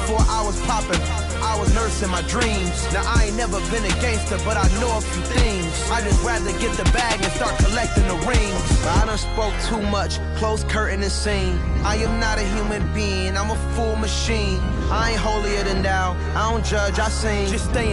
I was popping, I was nursing my dreams. Now I ain't never been a gangster, but I know a few things. I just rather get the bag and start collecting the rings. But I done spoke too much, close curtain and scene. I am not a human being, I'm a full machine. I ain't holier than thou, I don't judge, I sing. Just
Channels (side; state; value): both; identical; correlation 1.00